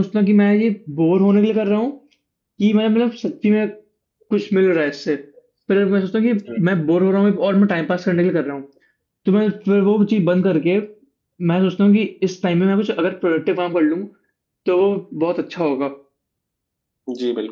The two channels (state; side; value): identical; both; correlation 1.00